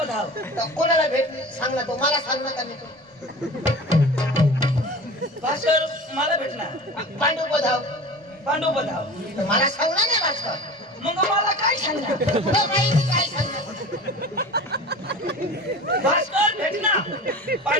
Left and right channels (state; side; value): normal; both; correlation 0.35